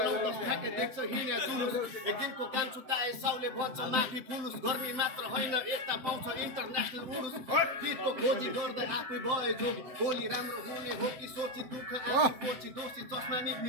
ठ्याक्कै देख्छ हिँड्या जुलुस एक दिनको काम छुटाए साउले भन्छ माफी पुलुस गर्मी मात्र होइन यता पाउँछ इन्टरनेसनल उडुस गीतको खोजी गर्दै आफै भए जोगी भोलि राम्रो हुने हो कि सोची दुःख आफू पोची दोषी चस्मा नि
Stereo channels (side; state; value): left; late; 7.7 ms